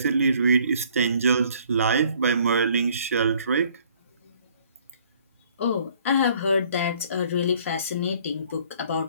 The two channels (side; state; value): both; inverted; correlation -0.59